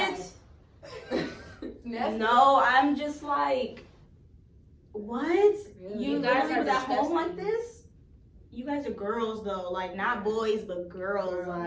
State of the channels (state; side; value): identical; both; correlation 1.00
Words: Nasty. No, I'm just like, what? You You guys guys are was at home disgusting. like this? You guys are girls though, like not boys but girls.